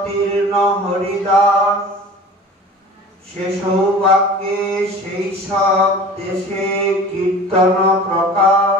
হরিদাস, সে সৌভাগ্যে সেই সব দেশে কীর্তন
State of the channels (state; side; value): normal; both; correlation 0.40